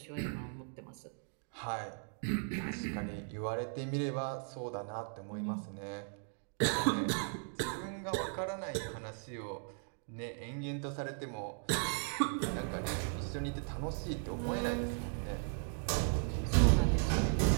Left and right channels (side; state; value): left; silent; 53 dB below the other